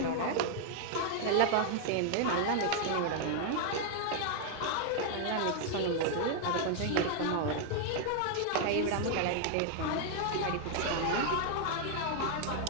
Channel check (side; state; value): both; different; correlation 0.00